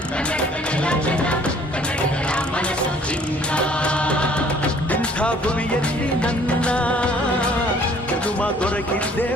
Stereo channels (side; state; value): both; normal; correlation 0.57